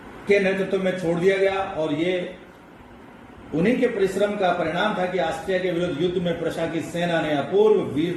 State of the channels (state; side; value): identical; both; correlation 1.00